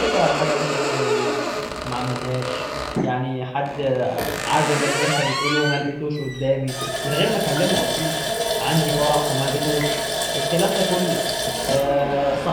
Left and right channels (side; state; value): both; identical; correlation 1.00